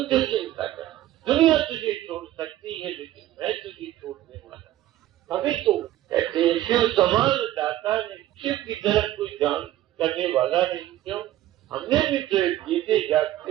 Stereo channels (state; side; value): quieter; left; 14.1 dB